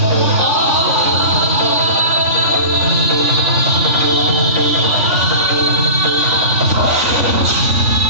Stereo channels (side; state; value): left; late; 3.4 ms